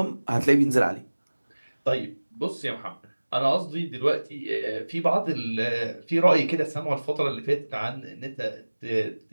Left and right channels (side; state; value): both; inverted; correlation -1.00